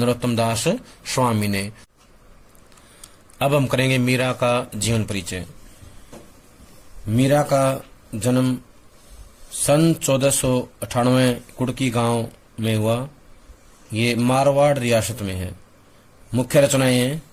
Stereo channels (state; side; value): identical; both; correlation 1.00